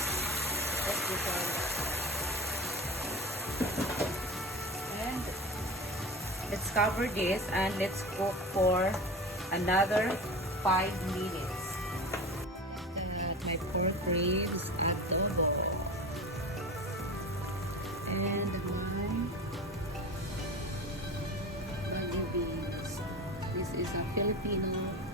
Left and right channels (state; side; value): normal; both; correlation 0.30